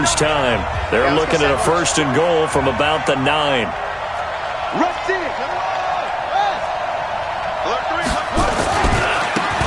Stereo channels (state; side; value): identical; both; correlation 1.00